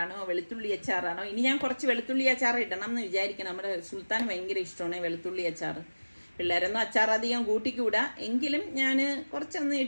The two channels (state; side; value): inverted; both; correlation -1.00